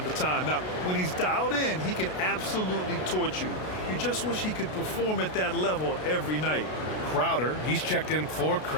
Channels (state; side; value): late; right; 33 ms